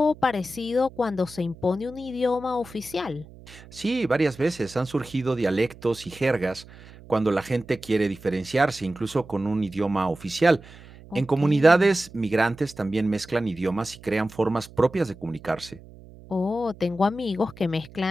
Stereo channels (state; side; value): noise; right; hum, 20 dB below the sound